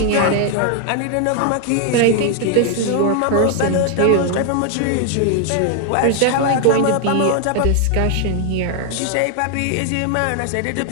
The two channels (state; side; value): different; both; correlation 0.00